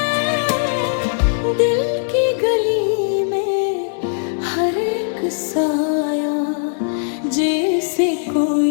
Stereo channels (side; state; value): right; silent; digital silence